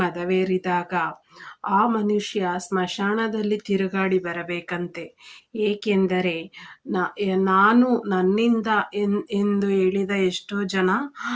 ಮದವೇರಿದಾಗ ಆ ಮನುಷ್ಯ ಸ್ಮಶಾನದಲ್ಲಿ ತಿರುಗಾಡಿ ಬರಬೇಕಂತೆ. ಏಕೆಂದರೆ ನಾನು ನನ್ನಿಂದ ಎಂದು ಹೇಳಿದ ಎಷ್ಟೋ ಜನ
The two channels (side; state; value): both; identical; correlation 1.00